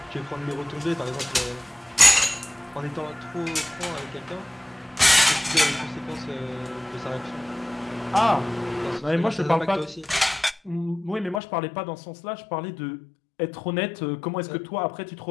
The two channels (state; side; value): drops out; right; at 11.4 s